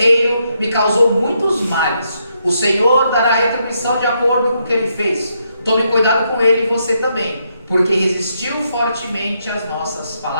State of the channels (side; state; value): both; inverted; correlation -0.78